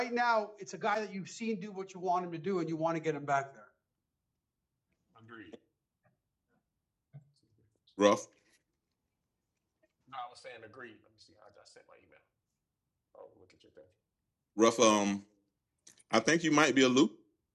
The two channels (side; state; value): both; identical; correlation 1.00